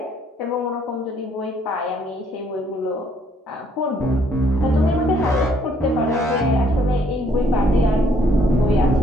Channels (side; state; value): both; normal; correlation 0.66